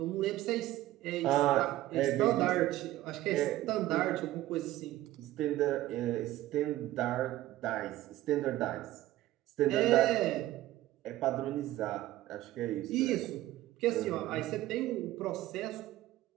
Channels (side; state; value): left; quieter; 15.3 dB